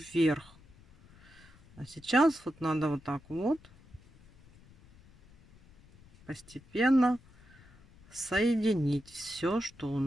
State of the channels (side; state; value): left; noise; rumble, 25 dB below the sound